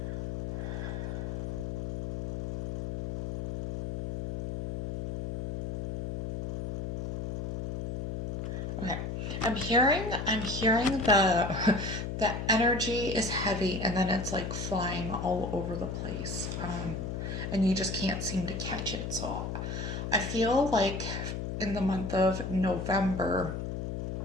Okay. I'm hearing the energy is heavy and then it's like flying all over the place. And you just can't seem to catch it. So I feel like in the month of November,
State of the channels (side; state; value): left; noise; hum, 3 dB below the sound